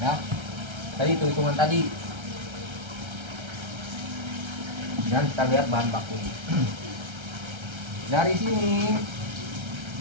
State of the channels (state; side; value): late; left; 1.3 ms